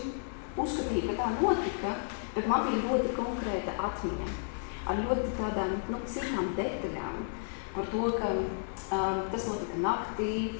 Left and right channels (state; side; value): silent; right; digital silence